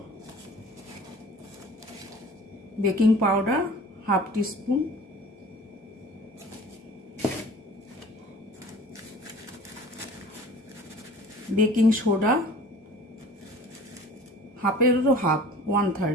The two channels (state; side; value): normal; both; correlation 0.45